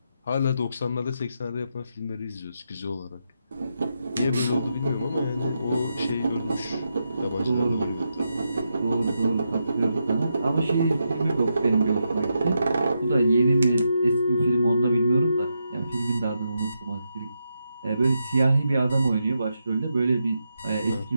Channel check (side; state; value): both; inverted; correlation -0.84